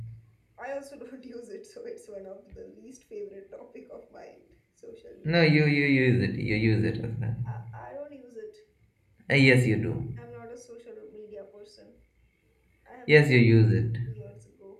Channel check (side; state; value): both; identical; correlation 1.00